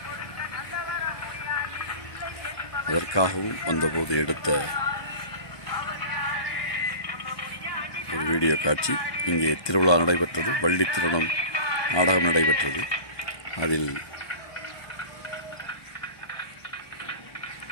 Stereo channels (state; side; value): late; right; 1.3 ms